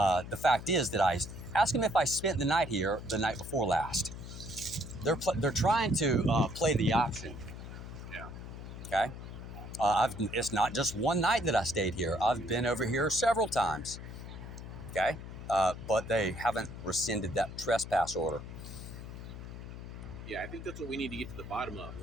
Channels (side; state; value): left; noise; hum, 11 dB below the sound